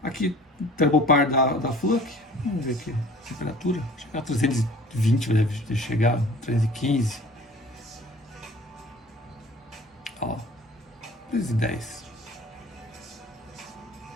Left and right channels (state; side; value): normal; both; correlation 0.47